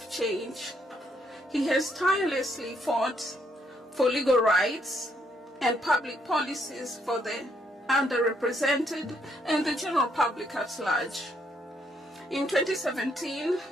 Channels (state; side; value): normal; both; correlation 0.72